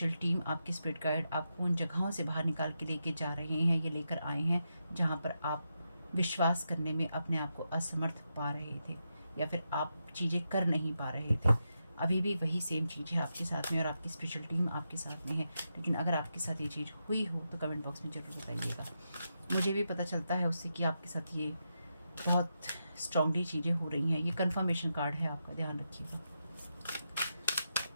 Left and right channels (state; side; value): inverted; both; correlation -0.86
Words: टीम, आपकी स्पिरिट गाइड आपको उन जगहों से बाहर निकाल के लेके जा रहे हैं, ये लेकर आए हैं जहाँ पर आप विश्वास करने में अपने आप को असमर्थ पा रहे थे, या फिर आप चीज़ें कर नहीं पा रहे थे। अभी भी वही सेम चीज़ है आपके साथ में, और आपकी स्पिरिचुअल टीम आपके साथ में है। लेकिन अगर आपके साथ ये चीज़ हुई हो तो कमेंट बॉक्स में ज़रूर बताइएगा। मुझे भी पता चलता है उससे कि आपके साथ ये बहुत स्ट्रांगली चीज़ें हो रही हैं। ये कंफर्मेशन कार्ड है आपका, ध्यान रखिएगा।